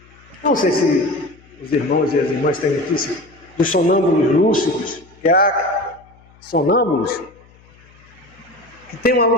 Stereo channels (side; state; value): left; noise; hum, 27 dB below the sound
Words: Não sei se os irmãos e as irmãs têm notícia dos sonâmbulos lúcidos, que há sonâmbulos que têm uma